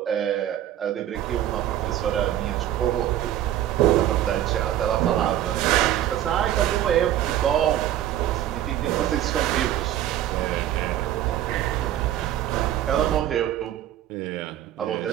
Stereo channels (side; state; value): left; quieter; 12.1 dB